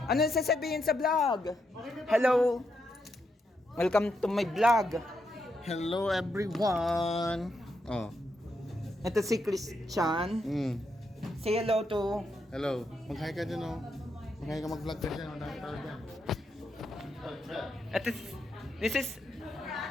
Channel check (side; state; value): both; normal; correlation 0.81